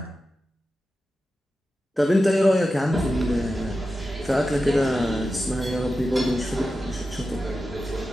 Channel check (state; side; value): normal; both; correlation 0.92